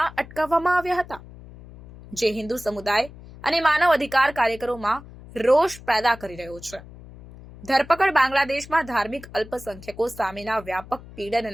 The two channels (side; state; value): left; noise; hum, 18 dB below the sound